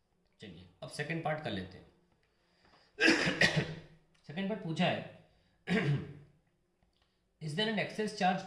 चलिए अब सेकेंड पार्ट कर लेते हैं. सेकेंड पार्ट पूछा है is there an excess charge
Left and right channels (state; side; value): identical; both; correlation 1.00